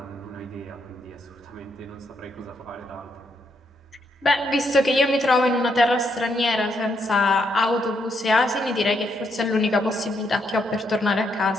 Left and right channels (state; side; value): normal; both; correlation 0.77